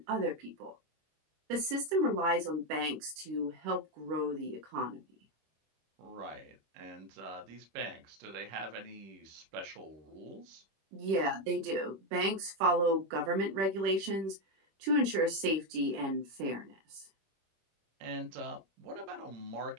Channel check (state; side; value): late; left; 26 ms